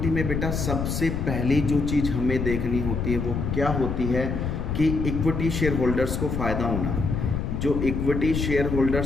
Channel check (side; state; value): left; noise; rumble, 2 dB below the sound